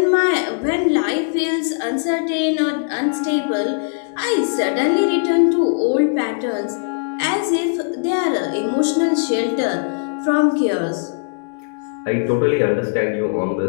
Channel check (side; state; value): right; silent; digital silence